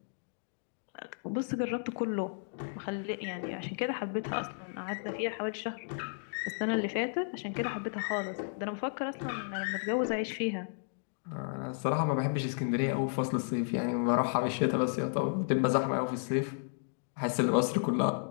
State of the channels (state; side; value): silent; right; digital silence